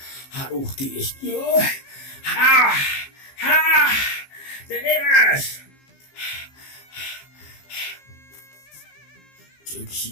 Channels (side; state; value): right; late; 15 ms